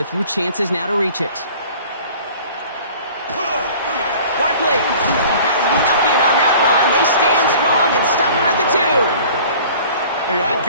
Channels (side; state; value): both; inverted; correlation -0.46